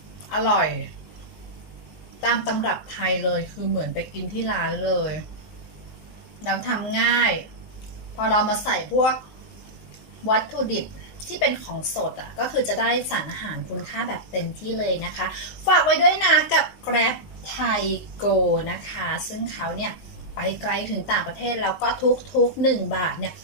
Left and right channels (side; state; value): right; late; 19 ms